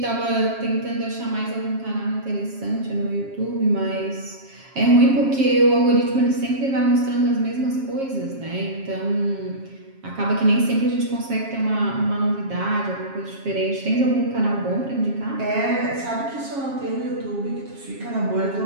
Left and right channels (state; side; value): late; left; 7.4 ms